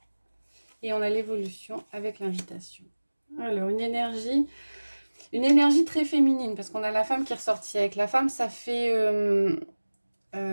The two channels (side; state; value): both; inverted; correlation -1.00